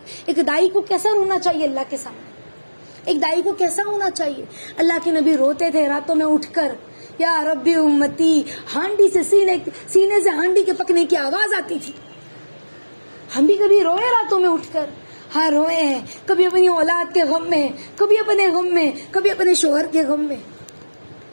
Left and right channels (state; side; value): inverted; both; correlation -1.00